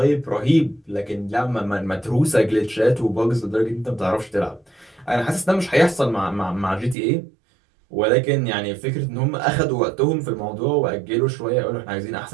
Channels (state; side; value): drops out; left; at 7.0 s